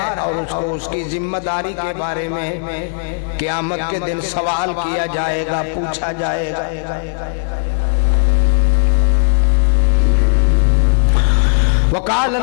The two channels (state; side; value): silent; right; digital silence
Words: और उसको उसकी जिम्मेदारी के बारे में क़यामत के दिन सवाल किया जाएगा, पूछा जाएगा। वक़ाल